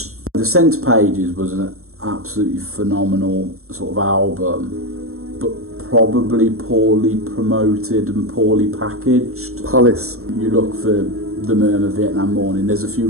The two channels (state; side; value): late; left; 0.63 ms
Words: The Centre Pages was an absolutely phenomenal sort of album, but probably poorly promoted and poorly packaged. Palace. You look for the Murmur Vietnam Morning, there's a few